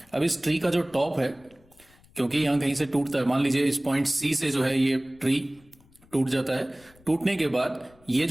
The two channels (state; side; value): noise; left; rumble, 29 dB below the sound